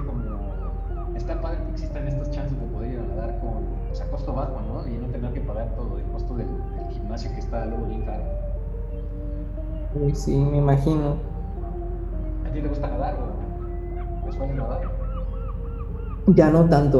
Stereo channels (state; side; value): identical; both; correlation 1.00